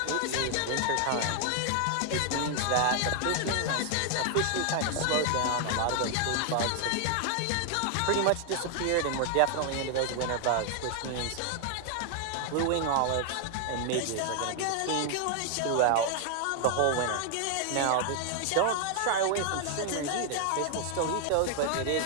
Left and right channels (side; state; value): both; different; correlation 0.00